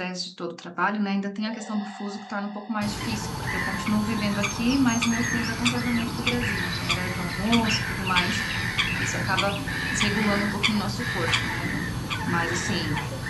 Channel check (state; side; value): identical; both; correlation 1.00